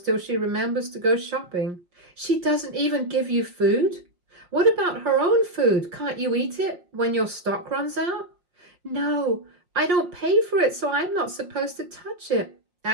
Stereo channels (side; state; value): left; late; 5.6 ms